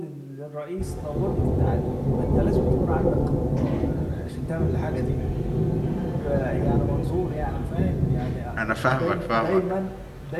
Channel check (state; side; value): identical; both; correlation 1.00